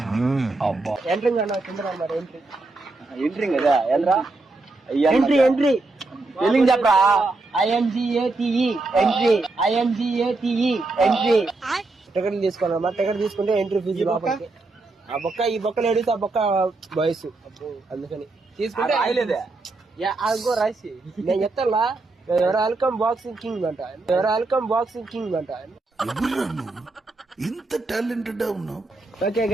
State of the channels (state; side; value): quieter; left; 3.3 dB